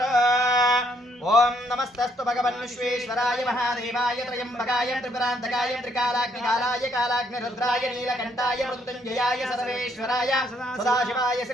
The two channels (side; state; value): both; normal; correlation 0.70